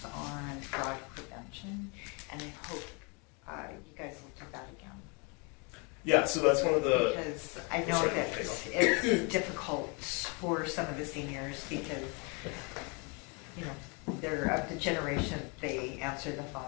on fraud prevention, and I hope you guys will do that again. Yeah, so that's one of the, Because I know Sorry, that take off. it's difficult for some of the seniors because, you know, they're of the generation, they answer the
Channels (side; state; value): right; quieter; 32.8 dB